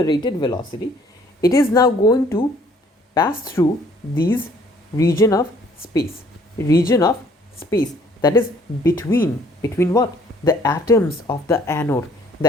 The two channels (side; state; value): both; normal; correlation 0.60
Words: velocity, it is now going to pass through these region of space that is between what? The atoms of the anode,